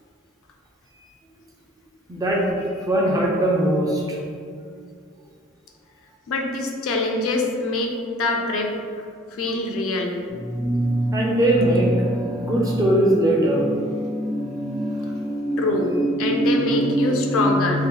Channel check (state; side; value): normal; both; correlation 0.56